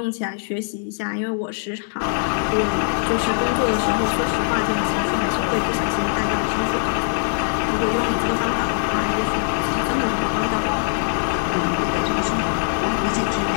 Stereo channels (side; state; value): right; silent; digital silence